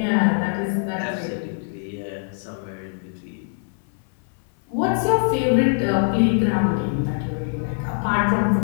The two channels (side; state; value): right; silent; 59 dB below the other